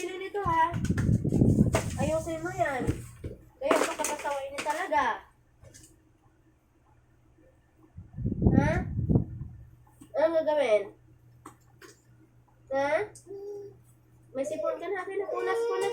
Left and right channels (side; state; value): both; identical; correlation 1.00